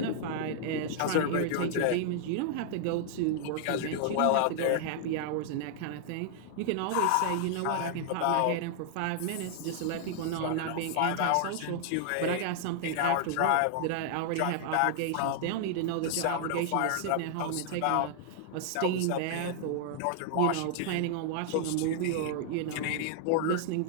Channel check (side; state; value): both; different; correlation -0.01